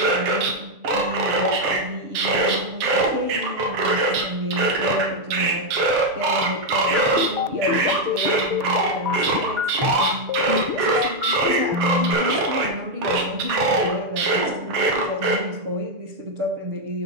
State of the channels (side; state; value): left; late; 7.0 ms